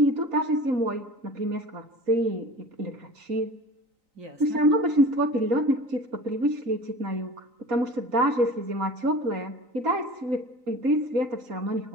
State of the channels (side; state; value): left; late; 3.9 ms